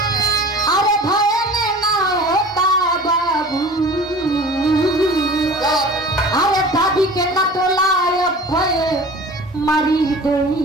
अरे भय में ना होता बाबू अरे दादी के न तोलाय भय मरी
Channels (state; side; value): normal; both; correlation 0.41